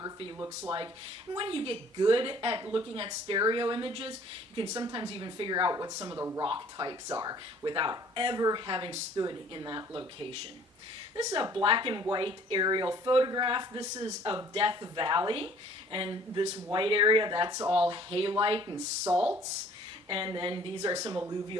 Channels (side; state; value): both; normal; correlation 0.55